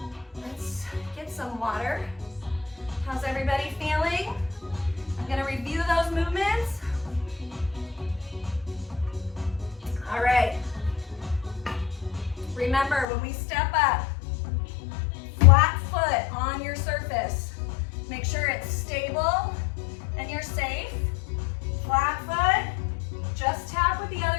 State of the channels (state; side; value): drops out; right; at 13.1 s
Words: Let's get some water. How's everybody feeling? I'm gonna review those movements. All right. Remember, when we step up, flat foot on your surface. Make sure it's stable and you're safe. Flat foot, just tap with the